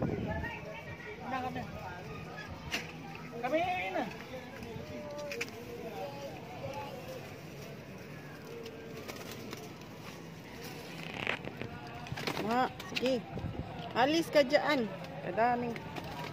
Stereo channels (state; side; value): identical; both; correlation 1.00